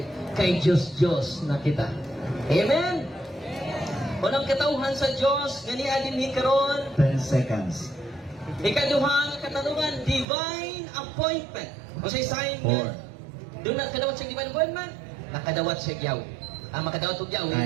kay Diyos na kita. Amen? Walang katauhan sa Diyos, ganiya din ni karon. 10 seconds. Ikaduha nga katanungan, divine appointment. O sa sign nga, doon na kadawat siya divine appointment, nakadawat siya yaw. Ang makadawat og yaw,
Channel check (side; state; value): left; drops out; at 10.2 s